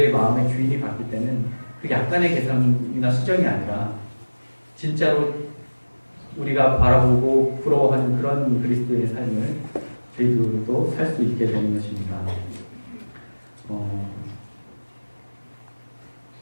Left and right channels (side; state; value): both; inverted; correlation -1.00